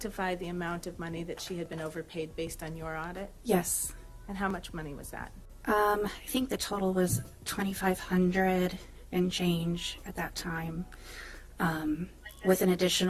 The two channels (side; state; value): both; identical; correlation 1.00